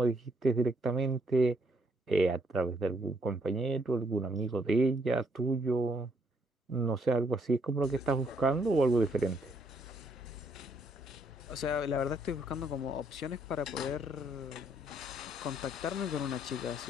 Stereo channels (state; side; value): normal; both; correlation 0.71